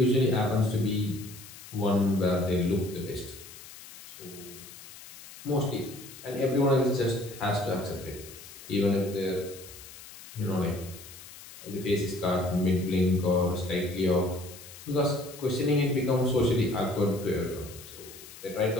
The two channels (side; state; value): left; noise; hiss, 16 dB below the sound